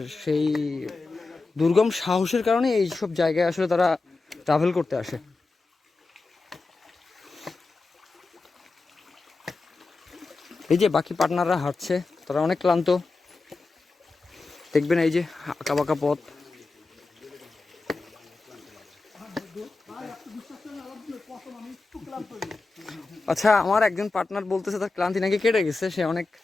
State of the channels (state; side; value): quieter; right; 3.7 dB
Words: সেই দুর্গম সাহসের কারণে এইসব জায়গায় আসলে তারা ট্রাভেল করতে আসে। এই যে বাকি পার্টনাররা হাঁটছে, তারা অনেক ক্লান্ত, দেখবেন এই যে আঁকা বাঁকা পথ। আচ্ছা, আমার একজন পার্টনার বলতেছে তার ক্লান্তি নাকি কেটে গেছে, সে অনেক